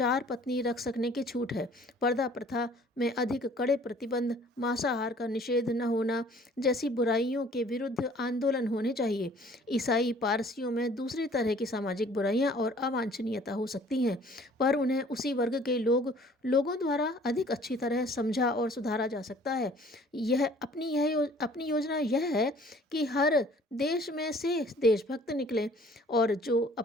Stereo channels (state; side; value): normal; both; correlation 0.54